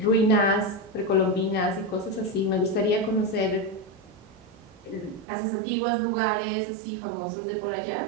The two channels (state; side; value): drops out; left; at 5.2 s